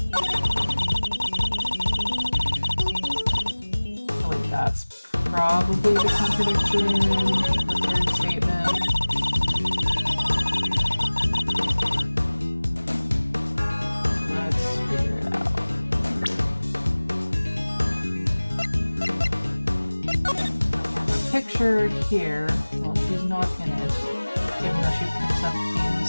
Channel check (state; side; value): inverted; both; correlation -1.00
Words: Oh wait, that's probably the contradiction, the third statement. Picture here, well, she's not in it, even though she picks up